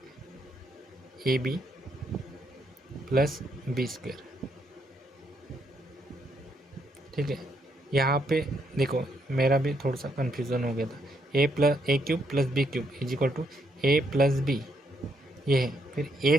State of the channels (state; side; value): normal; both; correlation 0.75